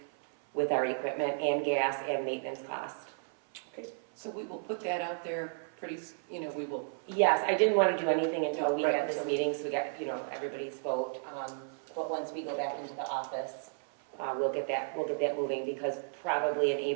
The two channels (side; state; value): left; silent; 56 dB below the other